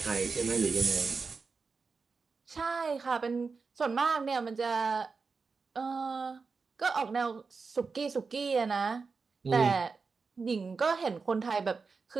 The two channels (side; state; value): left; quieter; 4.7 dB